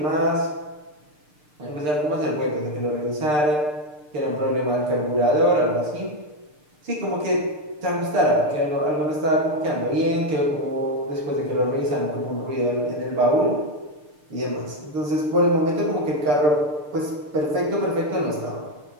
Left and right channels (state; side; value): late; left; 6.7 ms